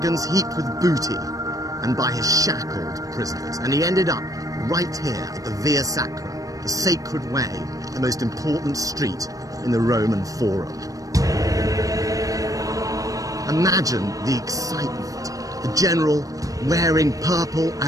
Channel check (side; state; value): left; late; 0.17 ms